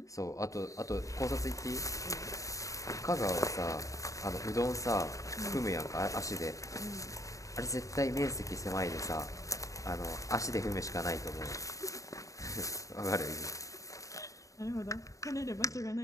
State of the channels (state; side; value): late; right; 0.16 ms